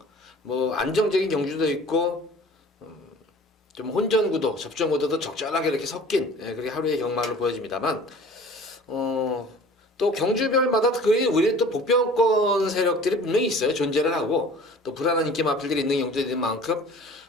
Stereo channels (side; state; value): both; normal; correlation 0.46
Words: 뭐 안정적인 경주도 있고 좀 혼전 구도, 접전 구도도 적절하게 이렇게 섞인 그렇게 하루의 경마를 보여집니다만 또 경주별마다 우리 또 복병권 세력들이 분명히 있어요. 존재를 하고 또 불안한 인기 마필들이 있는 경주들인 만큼